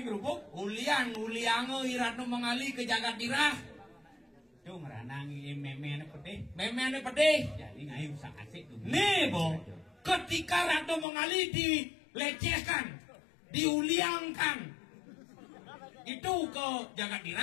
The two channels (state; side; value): drops out; right; at 11.1 s